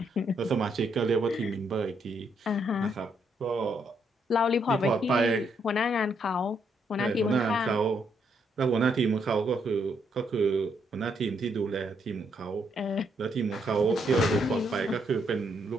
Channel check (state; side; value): normal; both; correlation 0.75